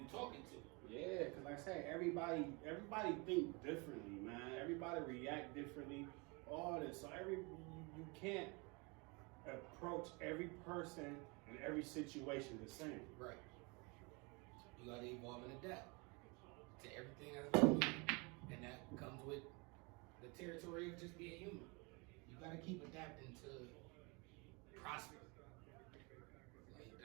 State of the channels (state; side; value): quieter; left; 29.2 dB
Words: talking to. Yeah, because like I said, everybody think differently, man. Everybody react differently. All this, so you can't approach every person and every situation the same. Right. You gotta evolve and adapt to everything that's going on, and that comes with the territory of just being human. You gotta keep adapting to prosper. Like,